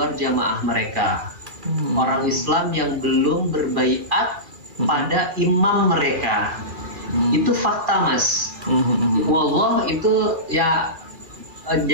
jamaah mereka. Orang Islam yang belum berbaiat pada imam mereka. Itu fakta, Mas. Wallah, itu ya,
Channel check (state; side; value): late; left; 2.3 ms